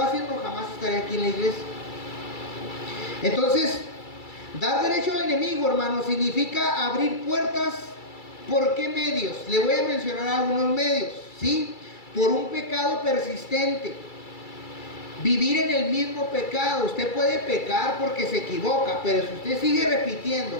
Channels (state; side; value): late; right; 2.3 ms